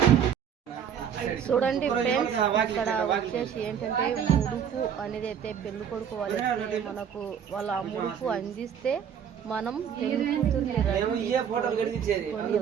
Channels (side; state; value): left; quieter; 8.2 dB